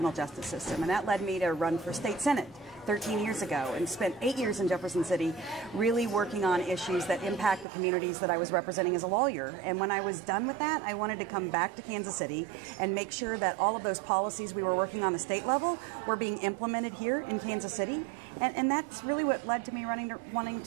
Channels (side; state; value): left; drops out; at 7.7 s